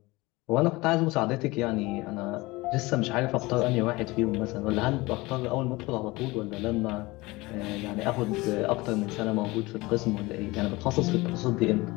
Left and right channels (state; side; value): quieter; right; 21.9 dB